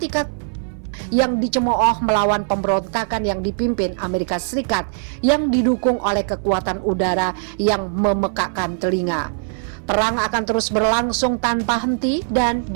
yang dicemooh melawan pemberontakan yang dipimpin Amerika Serikat yang didukung oleh kekuatan udara yang memekakkan telinga. Perang akan terus berlangsung tanpa henti dan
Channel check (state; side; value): silent; left; 57 dB below the other